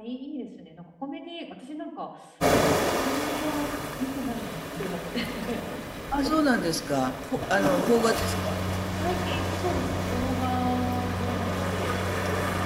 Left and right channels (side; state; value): both; identical; correlation 1.00